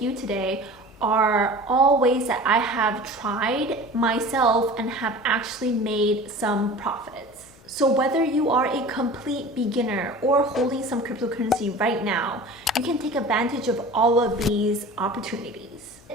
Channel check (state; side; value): noise; left; hum, 26 dB below the sound